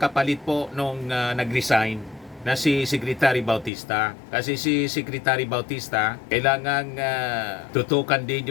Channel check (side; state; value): right; drops out; at 3.7 s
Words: kapalit po nung nag-resign na si Secretary Bautista. Kasi si Secretary Bautista, kailangang tutukan din